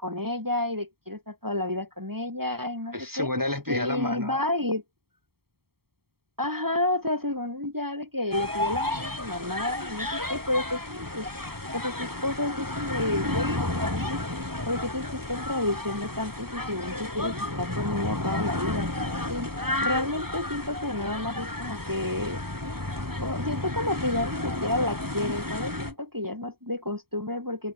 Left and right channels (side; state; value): left; late; 0.95 ms